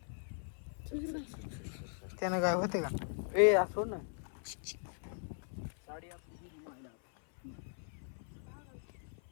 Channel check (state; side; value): silent; right; 52 dB below the other